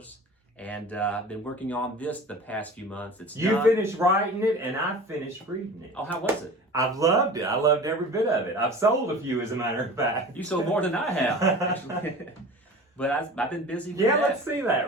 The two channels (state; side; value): normal; both; correlation 0.38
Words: and I've been working on this the past few months. It's You done. finished writing it and I finished reading it. Oh, how was it? I've loved it. I loved every bit of it. I've sold a few, as a matter of fact. You sold more than I have, actually. But I've been busy with that. Let's see